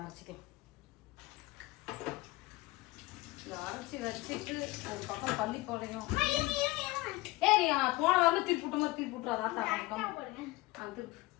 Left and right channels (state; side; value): quieter; right; 20.5 dB